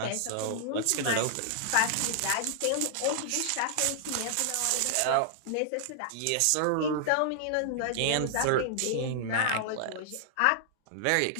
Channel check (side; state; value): both; different; correlation -0.01